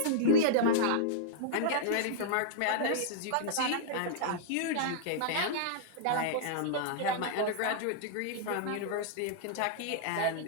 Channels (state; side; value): different; both; correlation -0.02